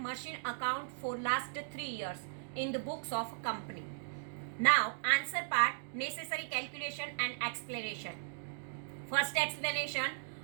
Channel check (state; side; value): silent; left; digital silence